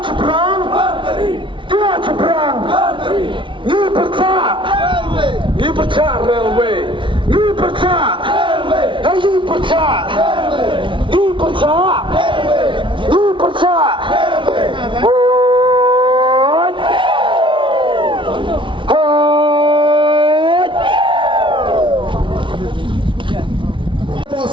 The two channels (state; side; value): late; left; 0.24 ms